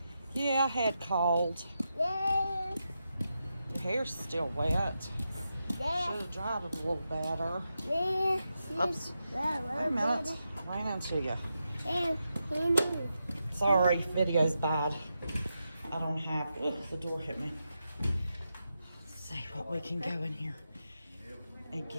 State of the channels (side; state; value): both; inverted; correlation -0.87